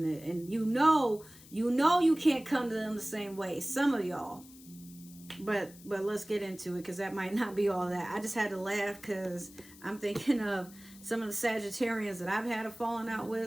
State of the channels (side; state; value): left; noise; hiss, 21 dB below the sound